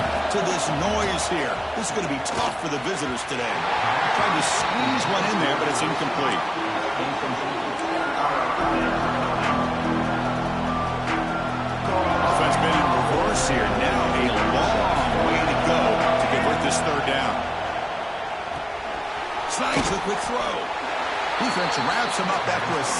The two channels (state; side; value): identical; both; correlation 1.00